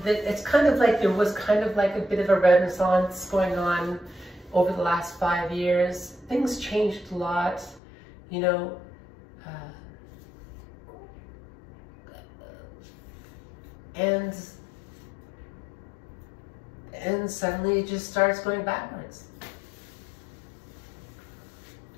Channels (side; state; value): right; drops out; at 7.8 s